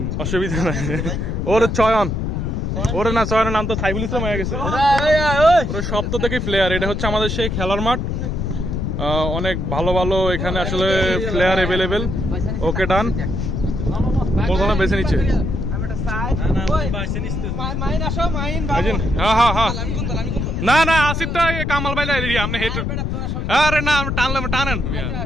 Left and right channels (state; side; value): noise; left; rumble, 2 dB below the sound